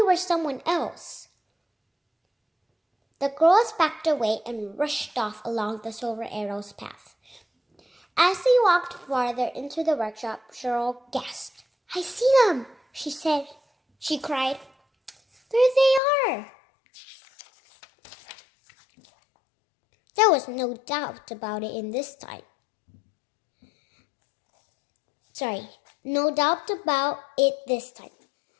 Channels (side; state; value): right; drops out; at 16.0 s